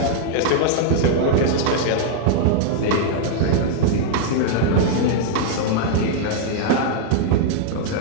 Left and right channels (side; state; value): both; different; correlation -0.01